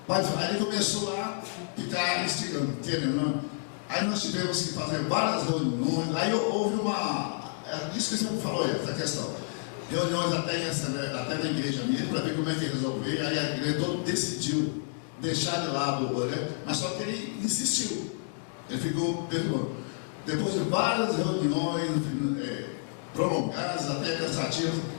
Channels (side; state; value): right; silent; digital silence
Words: aí ele começou a ficar instigando, querendo. Aí nós tivemos que fazer várias reuniões. Aí houve isso que você falou, essa questão. Reuniões até na igreja mesmo, para ver como é que resolver. Aí a igreja toda decidiu deixar de lado o Oré, mas só que ele insistiu. Ele ficou perdoando. Depois de várias reuniões prolongadas, até cansativas,